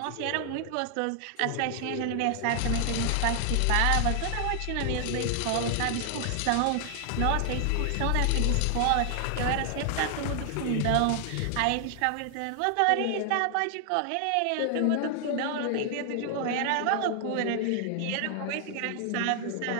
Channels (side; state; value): both; different; correlation 0.00